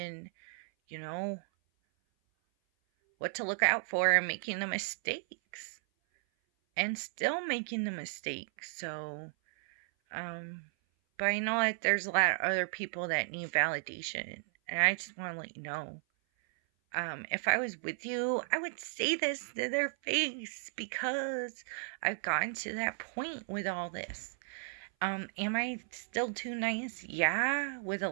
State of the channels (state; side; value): silent; left; 55 dB below the other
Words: what to look out for and making the mistakes and still making the mistakes. So but I know that there's a lot of other people that need validation, and I just want to let you know, if I was with you, I would say this to their face, because I've gotten to that point with all this. Am I still too nice? Yeah. With a